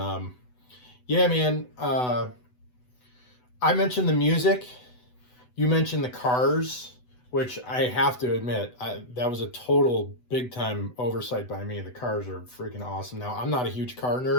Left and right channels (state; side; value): late; right; 8.0 ms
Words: yeah, man. I mentioned the music. You mentioned the cars, which I have to admit, that was a total big time oversight by me. The cars are freaking awesome. Now, I'm not a huge car